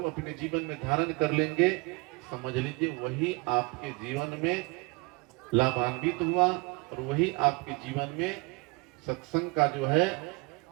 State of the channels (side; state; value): left; quieter; 27.9 dB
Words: अपने जीवन में धारण कर लेंगे, समझ लीजिए वही आपके जीवन में लाभान्वित हुआ और वही आपके जीवन में सत्संग का जो है